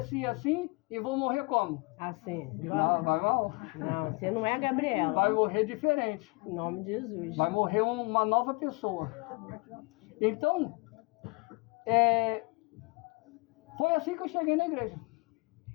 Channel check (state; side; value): quieter; right; 28.9 dB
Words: assim e vou morrer como? Assim. Não, vai mal. Não, você não é a Gabriela. Vai morrer diferente. Em nome de Jesus. Vai morrer uma nova pessoa. Então, foi assim que eu cheguei na igreja.